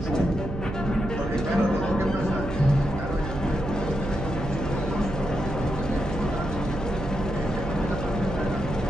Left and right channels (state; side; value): noise; right; hum, 7 dB below the sound